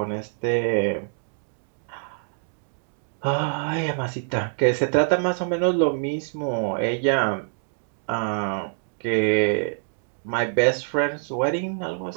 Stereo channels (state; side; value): silent; left; digital silence